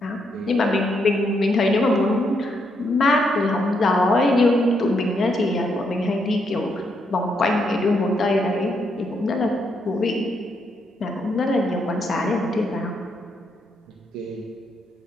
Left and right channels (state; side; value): normal; both; correlation 0.78